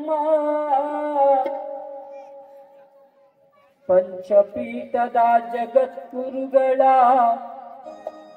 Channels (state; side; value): identical; both; correlation 1.00